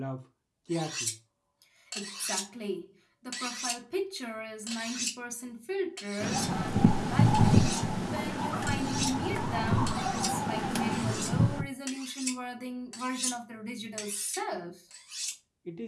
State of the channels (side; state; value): both; identical; correlation 1.00